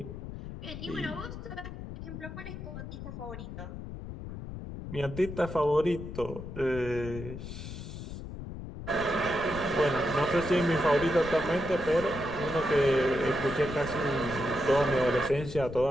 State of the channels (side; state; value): left; noise; rumble, 9 dB below the sound